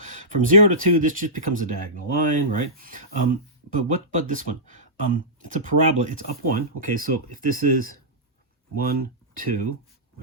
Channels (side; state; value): both; normal; correlation -0.16